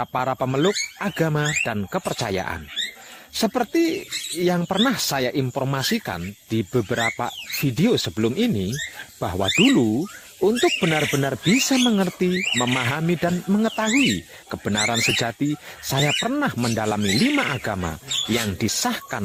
para pemeluk agama dan kepercayaan. Seperti yang pernah saya informasikan di beberapa video sebelum ini, bahwa dulu untuk benar-benar bisa mengerti, memahami, dan mengetahui kebenaran sejati, saya pernah mendalami 5 agama yang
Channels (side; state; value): both; identical; correlation 1.00